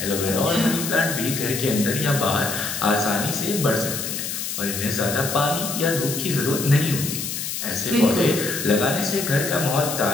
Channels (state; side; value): noise; left; hiss, 4 dB below the sound